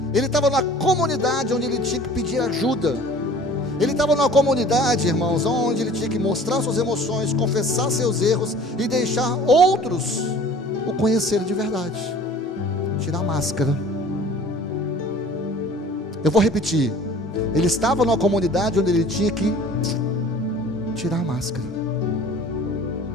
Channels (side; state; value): both; normal; correlation 0.47